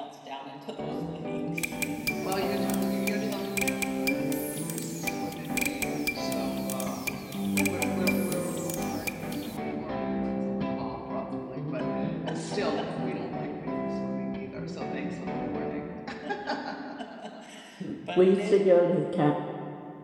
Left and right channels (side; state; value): both; identical; correlation 1.00